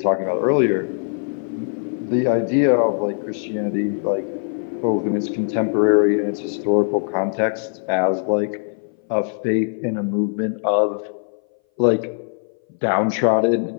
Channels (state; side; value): silent; right; 60 dB below the other